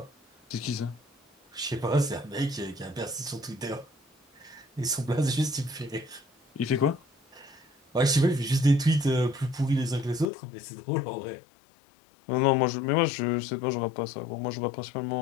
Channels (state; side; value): drops out; right; at 10.3 s